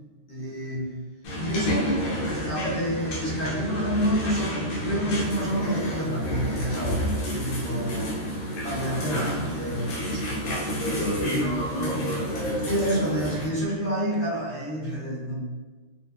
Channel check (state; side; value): late; right; 13 ms